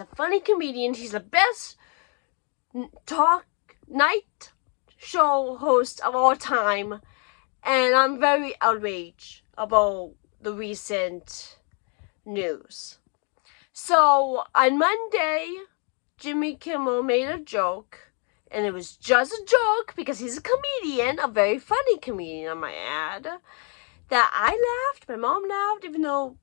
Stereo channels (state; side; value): quieter; right; 38.7 dB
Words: funny comedian. He's the best night show host of all time. And I'm very outraged about the recent news. So on Monday, Jimmy Kimmel made a joke. And it was just a joke because he's a comedian, a very funny comedian, I might add. That I laughed, my mom laughed, even though